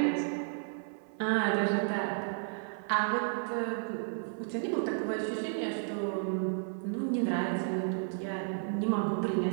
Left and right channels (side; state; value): left; silent; 56 dB below the other